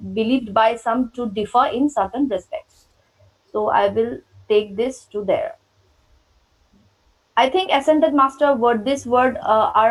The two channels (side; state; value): both; identical; correlation 1.00